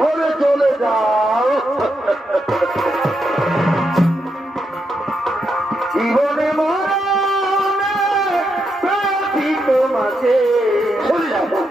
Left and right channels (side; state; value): both; normal; correlation 0.82